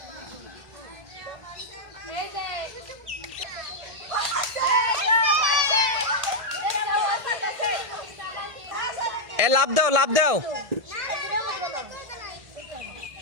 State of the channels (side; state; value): left; late; 1.7 ms